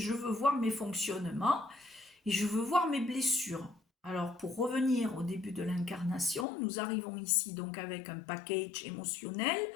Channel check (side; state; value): right; drops out; at 6.5 s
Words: veux voir mes fonctionnements et je veux voir mes blessures. Alors, pour revenir au début de l'incarnation, nous arrivons ici donc avec un package émotionnel